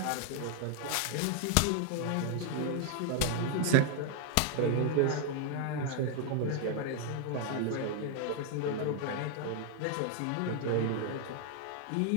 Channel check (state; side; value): different; both; correlation 0.00